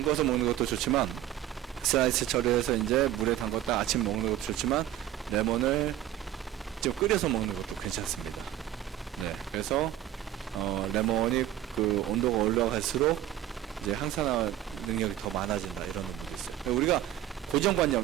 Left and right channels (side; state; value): left; quieter; 12.3 dB